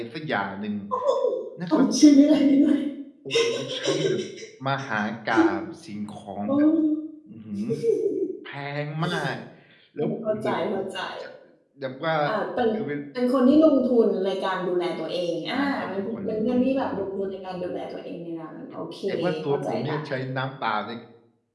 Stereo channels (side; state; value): both; identical; correlation 1.00